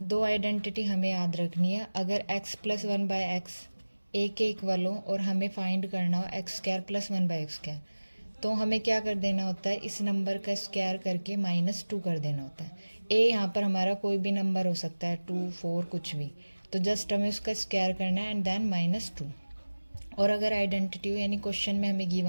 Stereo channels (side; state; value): both; inverted; correlation -1.00